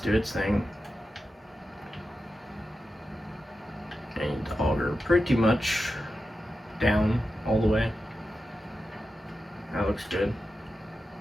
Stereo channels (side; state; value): both; normal; correlation 0.91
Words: do its thing. And the auger pretty much down all the way. That looks good.